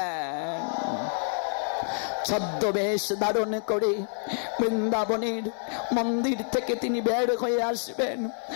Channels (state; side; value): silent; right; digital silence